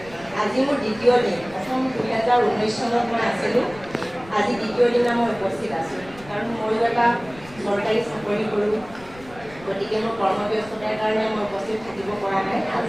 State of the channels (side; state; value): left; noise; rumble, 21 dB below the sound